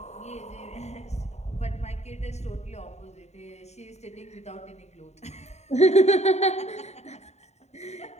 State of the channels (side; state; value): right; late; 0.32 ms